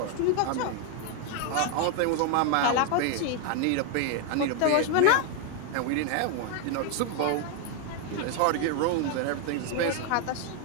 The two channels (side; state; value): both; different; correlation 0.01